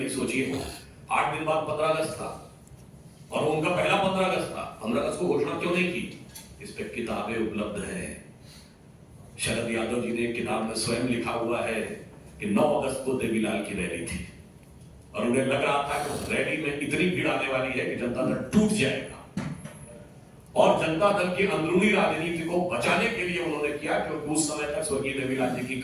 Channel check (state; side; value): identical; both; correlation 1.00